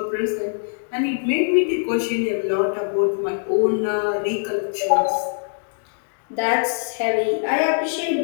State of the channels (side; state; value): right; silent; digital silence